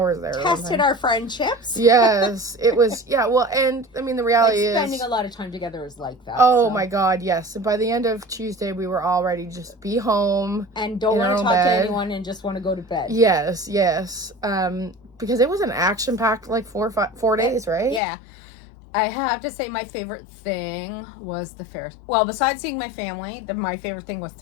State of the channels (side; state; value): right; drops out; at 18.0 s